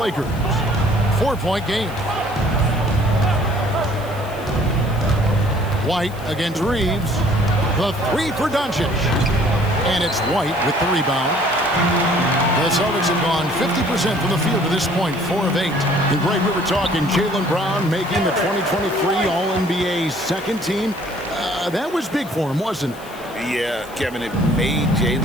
4-point game. White against Reeves. The 3 for Doncic. And it's White with the rebound. The Celtics have gone 50% from the field to this point, 4 of 8. And Greg, we were talking Jaylen Brown making the 2023 All-NBA second team. That was big for him, wasn't it? Yeah, Kevin, it made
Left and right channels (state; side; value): noise; left; hiss, 21 dB below the sound